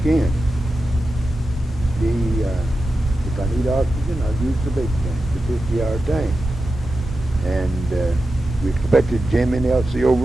If I need oxygen, I'll use the big tank, the 50-hour tank. And we expected Jim and Elsie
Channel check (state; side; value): normal; both; correlation 0.91